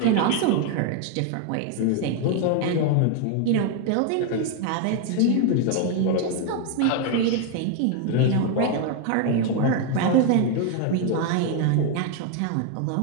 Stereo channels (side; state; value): both; different; correlation 0.00